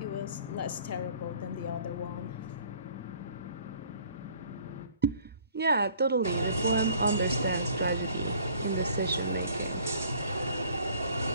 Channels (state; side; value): inverted; both; correlation -0.55